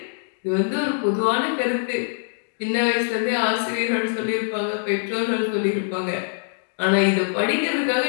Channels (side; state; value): right; silent; digital silence